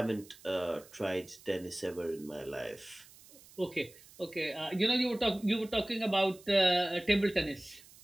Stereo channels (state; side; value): noise; right; hiss, 23 dB below the sound